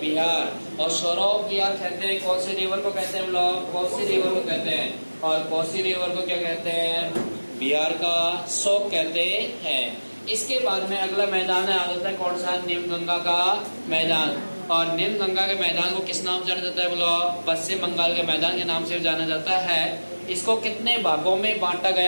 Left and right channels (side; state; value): both; inverted; correlation -1.00